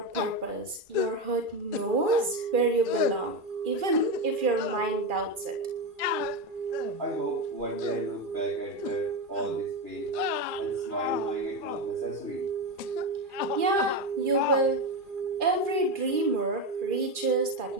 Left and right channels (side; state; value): left; late; 2.4 ms